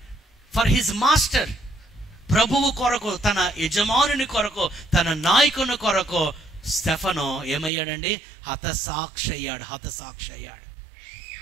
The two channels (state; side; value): drops out; left; at 7.7 s